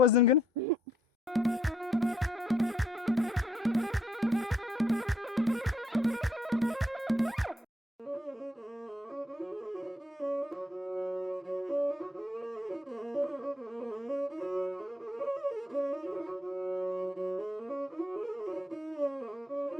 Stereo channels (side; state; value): both; normal; correlation 0.71